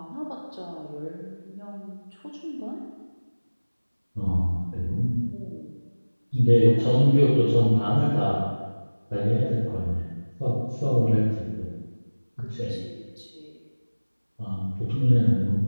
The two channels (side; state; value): both; inverted; correlation -1.00